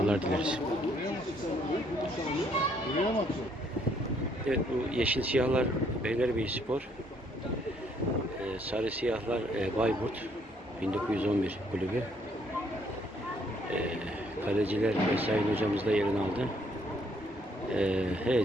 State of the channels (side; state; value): both; normal; correlation 0.68